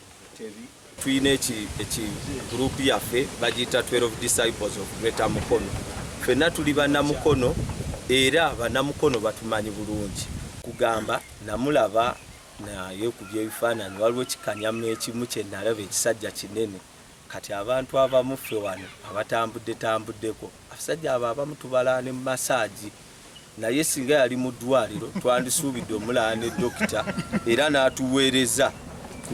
Tevi. Twine group yaffe bagita 12 disciples of Greater Mukono. Fena tuli bannamukono era bannamukono batumanyi bulungi. Kugamba namulaba naye ku byebifaananyi waliwo kikanyamu ekimu kye nalaba ekisajja kinene. Kati abantu abamu ffe wano abatambuddeko abasajja abo abamu tubala ne massage naye singa yali mu ddwaliro twandisuubidde omulala ne dokita era n'atuweereza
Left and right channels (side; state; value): both; identical; correlation 1.00